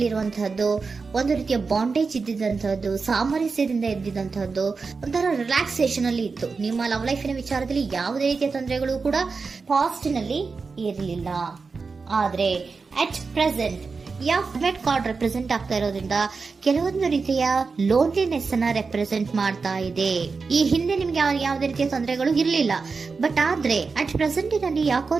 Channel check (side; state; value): left; quieter; 4.6 dB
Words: ಒಂದು ರೀತಿಯ ಬಾಂಡೇಜ್ ಇದ್ದಿದ್ದಂತಹದ್ದು, ಸಾಮರಸ್ಯದಿಂದ ಇದ್ದಿದ್ದಂತಹದ್ದು, ಒಂಥರ ರಿಲ್ಯಾಕ್ಸೇಷನ್ ಅಲ್ಲಿ ಇತ್ತು. ನಿಮ್ಮ ಲವ್ ಲೈಫಿನ ವಿಚಾರದಲ್ಲಿ ಯಾವುದೇ ರೀತಿಯ ತೊಂದರೆಗಳು ಕೂಡ ಪಾಸ್ಟ್ ನಲ್ಲಿ ಇರಲಿಲ್ಲ. ಆದ್ರೆ at present met card represent ಆಗ್ತಾ ಇರೋದ್ರಿಂದ ಕೆಲವೊಂದು ರೀತಿಯ ಲೋನ್ಲಿನೆಸ್ ಅನ್ನ ರೆಪ್ರೆಸೆಂಟ್ ಮಾಡ್ತಾ ಇದೆ. ಈ ಹಿಂದೆ ನಿಮ್ಗೆ ಯಾವುದೇ ರೀತಿಯ ತೊಂದರೆಗಳು ಇರಲಿಲ್ಲ, ಬಟ್ ಆದ್ರೆ ಅಟ್ ಪ್ರೆಸೆಂಟ್ ನಲ್ಲಿ